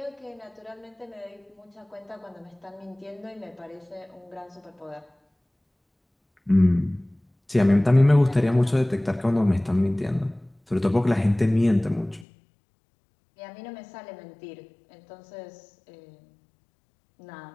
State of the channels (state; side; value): drops out; right; at 12.2 s